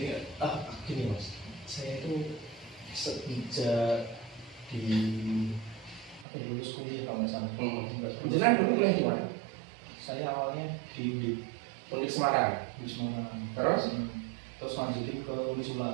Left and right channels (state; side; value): drops out; left; at 6.2 s